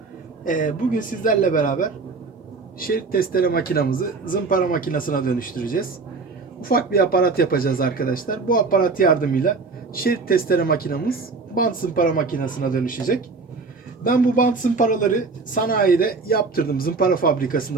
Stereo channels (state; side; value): quieter; left; 4.2 dB